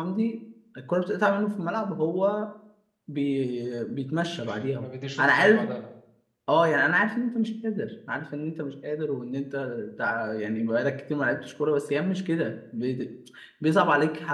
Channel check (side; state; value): both; identical; correlation 1.00